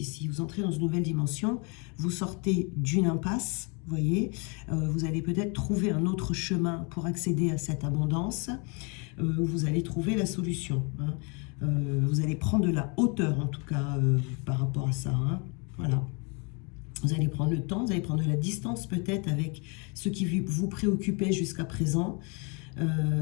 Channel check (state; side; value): quieter; right; 33.2 dB